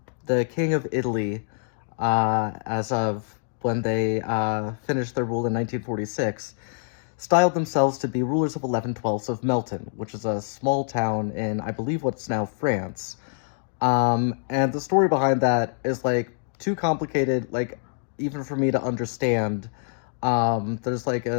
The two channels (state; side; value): silent; right; digital silence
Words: The king of Italy, as of when they finished their rule in 1946, styled themselves to be rulers of 11/12 of Melton, which is a small town in, I believe, what's now France. And the story behind that is, like, too complicated, like, even for me to understand. There's, like,